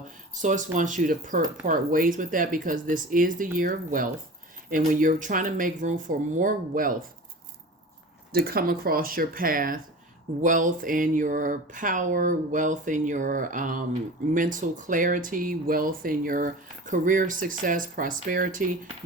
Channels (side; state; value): both; normal; correlation 0.36